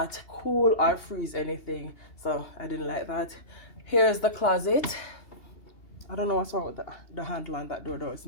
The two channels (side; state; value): right; late; 2.8 ms